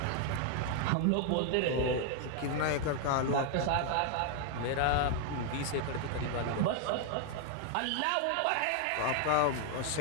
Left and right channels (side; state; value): both; different; correlation 0.00